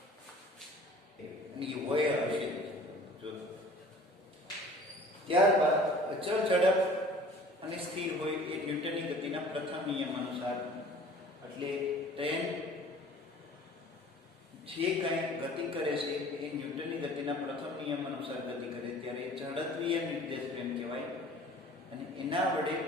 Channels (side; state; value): both; normal; correlation 0.47